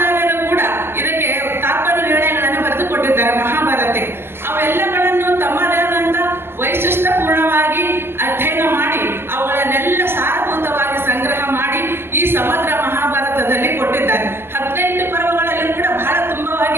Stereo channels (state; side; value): late; left; 0.11 ms